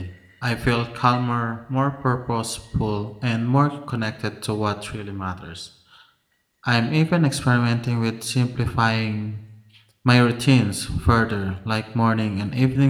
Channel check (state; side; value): identical; both; correlation 1.00